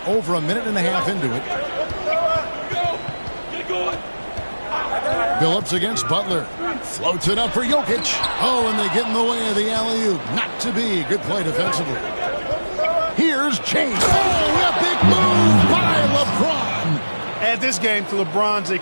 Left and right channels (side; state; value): both; inverted; correlation -1.00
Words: over a minute and a half into it. Billups against Butler. Floats it up for Jokic. Oh, and they get in the way of the alley-oop. Not to be. Good play defensively. Here's James. Oh, a big move by LeBron. Add this game to LeBron's